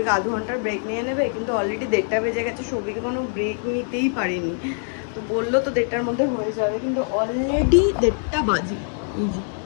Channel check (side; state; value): right; silent; 55 dB below the other